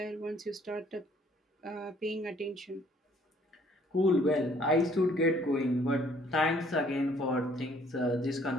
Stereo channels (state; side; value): normal; both; correlation 0.61